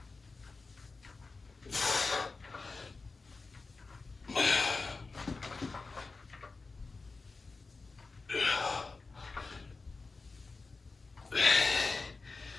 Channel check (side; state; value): right; quieter; 4.0 dB